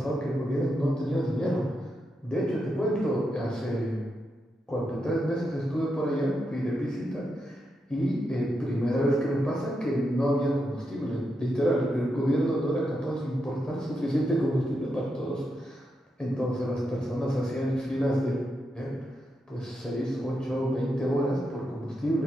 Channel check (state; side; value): normal; both; correlation 0.84